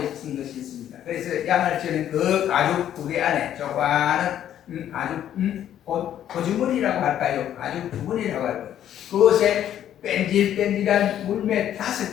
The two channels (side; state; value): right; quieter; 10.8 dB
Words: 쓴 것이 있습니다. 그래서 양을 치는 그 가죽 부대 안에 조그마한 가죽 고주머니라고 할까요? 가죽 주머니라고 할까요? 그곳에 뺀질뺀질한 물매